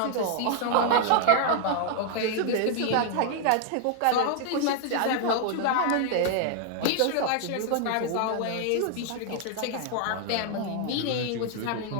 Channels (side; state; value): both; different; correlation 0.00